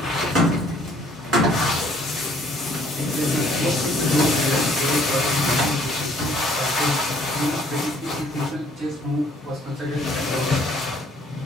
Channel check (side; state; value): both; normal; correlation 0.60